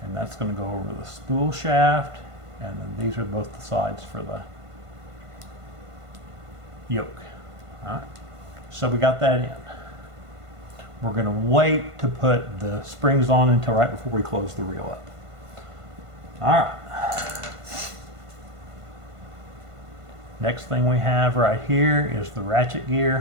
And that's going to go over the spool shaft, and then these are both the sides for the yoke. All right, so we got that in. We're going to wait to put the springs on until right before we close the reel up. All right. Next thing we have right here is the ratchet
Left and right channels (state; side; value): late; left; 1.5 ms